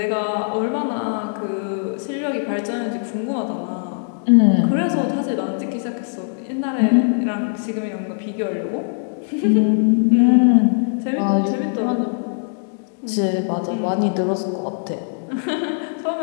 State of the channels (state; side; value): silent; right; 65 dB below the other